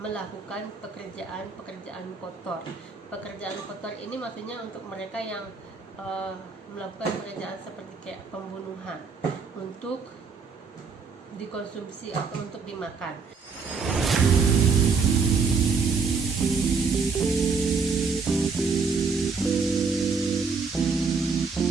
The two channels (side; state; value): left; quieter; 5.0 dB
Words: pekerjaan kotor. Pekerjaan kotor ini maksudnya untuk mereka yang melakukan pekerjaan seperti kayak pembunuhan untuk dikonsumsi atau untuk dimakan.